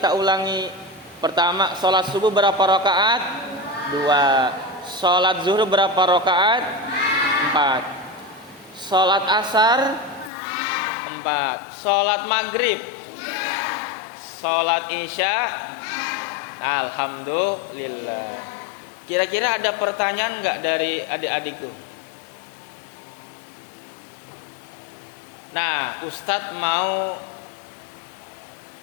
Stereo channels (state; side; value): drops out; right; at 10.3 s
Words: ulangi. Pertama, sholat subuh berapa rokaat? 2. Sholat zuhur berapa rokaat? 4. Sholat asar? 4. Sholat maghrib? Sholat isya? Alhamdulillah. Kira-kira ada pertanyaan nggak dari adik-adikku? Nah, Ustadz mau